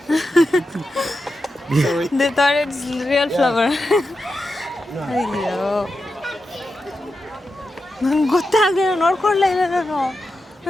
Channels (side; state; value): both; normal; correlation 0.89